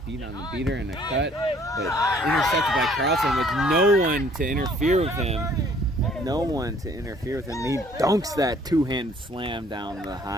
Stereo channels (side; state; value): both; normal; correlation 0.59